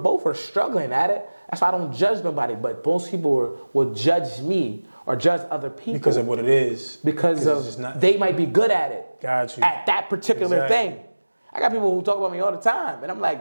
are struggling at it. That's why I don't judge nobody. But most people will judge me or judge other people because of what it is. Because they might be good at it. Got you. At that particular thing. I got people who talk about me all the time, and I'm like,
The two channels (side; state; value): both; inverted; correlation -1.00